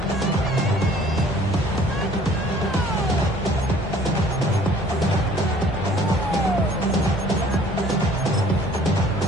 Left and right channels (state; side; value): normal; both; correlation 0.54